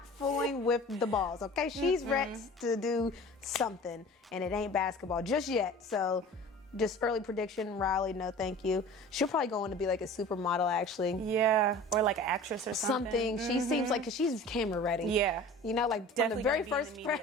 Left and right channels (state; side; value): normal; both; correlation 0.41